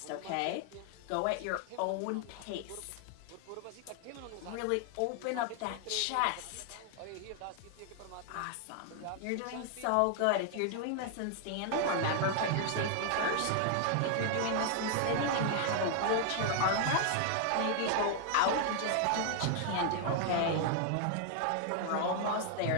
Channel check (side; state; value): both; different; correlation 0.00